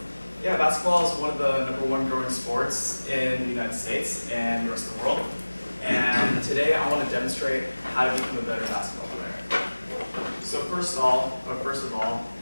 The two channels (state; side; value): inverted; both; correlation -1.00